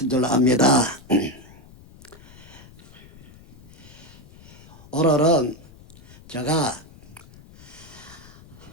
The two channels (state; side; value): noise; left; rumble, 21 dB below the sound